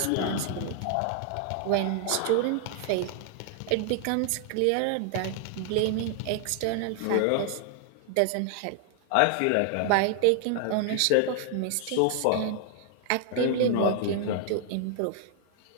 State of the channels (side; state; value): both; different; correlation 0.00